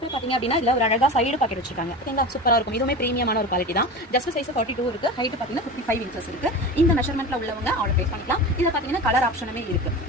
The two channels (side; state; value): both; normal; correlation 0.30